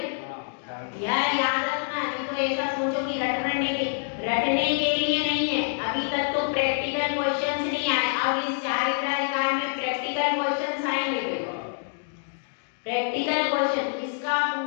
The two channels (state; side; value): silent; right; digital silence